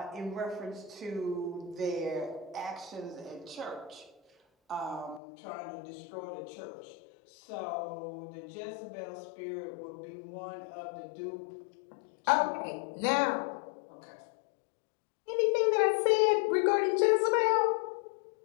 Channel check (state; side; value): drops out; right; at 5.2 s